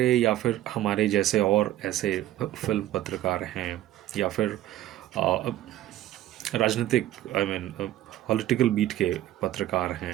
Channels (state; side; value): quieter; left; 13.9 dB